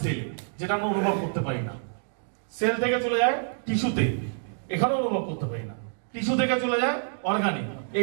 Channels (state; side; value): silent; left; digital silence